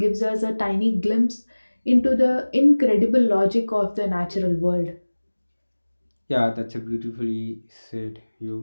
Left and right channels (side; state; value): both; inverted; correlation -1.00